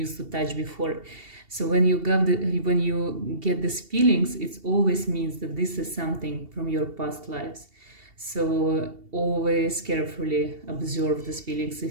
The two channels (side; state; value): left; late; 2.7 ms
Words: to touch before. So when you get these feelings, it always means that this is something from your past lives. So always carefully observe these feelings.